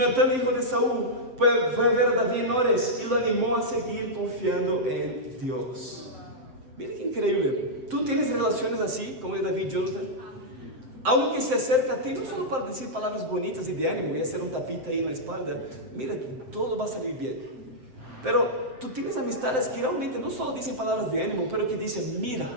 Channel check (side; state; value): left; late; 7.7 ms